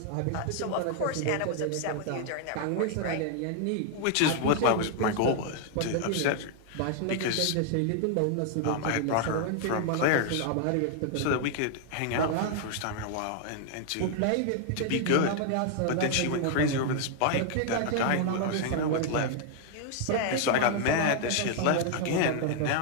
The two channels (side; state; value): both; different; correlation 0.00